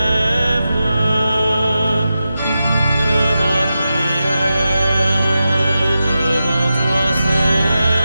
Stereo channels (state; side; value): inverted; both; correlation -0.90